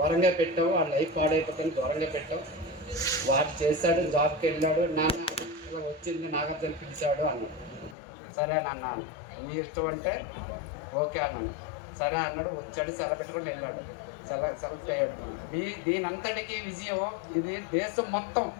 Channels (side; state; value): right; drops out; at 8.0 s